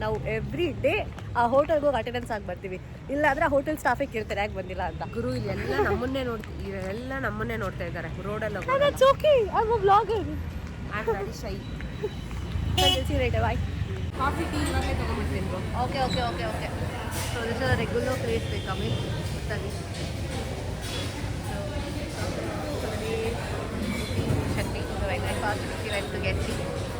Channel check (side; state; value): both; identical; correlation 1.00